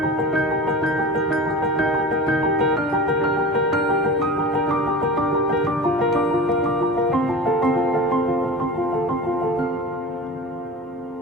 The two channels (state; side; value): normal; both; correlation 0.34